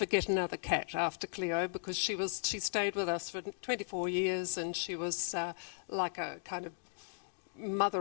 get another cat after Cleo because she stayed with us for 24 years and she was like a kind of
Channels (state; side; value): silent; right; digital silence